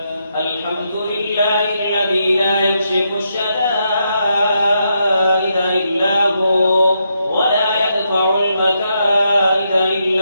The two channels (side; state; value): both; inverted; correlation -0.80